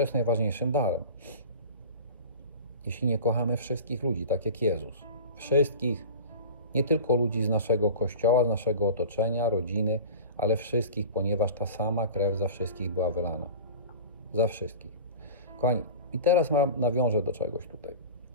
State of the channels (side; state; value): both; inverted; correlation -0.35